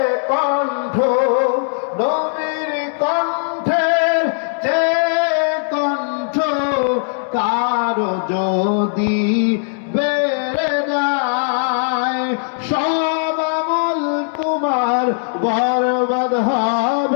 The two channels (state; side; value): silent; right; 67 dB below the other